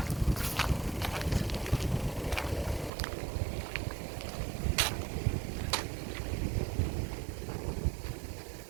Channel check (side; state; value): left; drops out; at 2.9 s